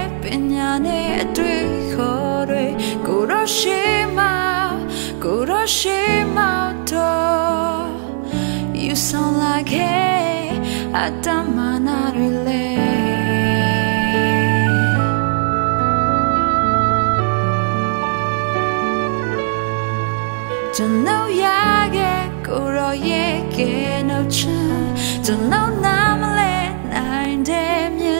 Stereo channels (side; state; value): left; silent; 67 dB below the other